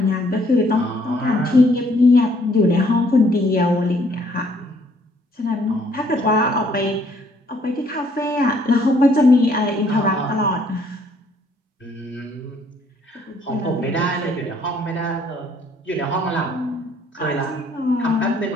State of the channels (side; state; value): both; normal; correlation 0.64